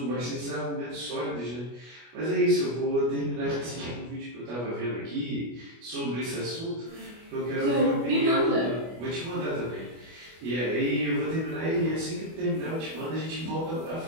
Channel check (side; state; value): left; late; 25 ms